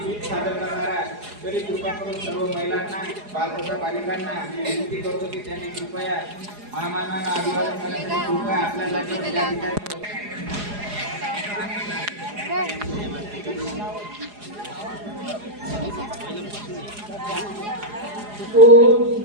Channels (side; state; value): left; late; 4.8 ms